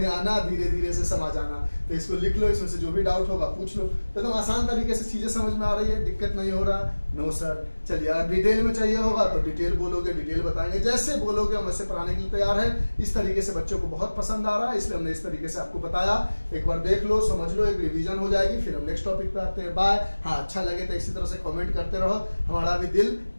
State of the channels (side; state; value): both; inverted; correlation -1.00